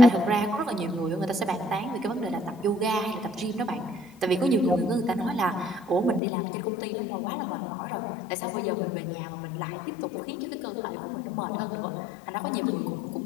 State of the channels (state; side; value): drops out; right; at 6.2 s